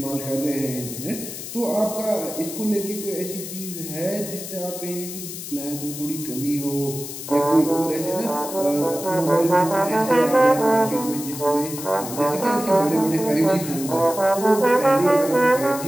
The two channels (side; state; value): left; noise; hiss, 9 dB below the sound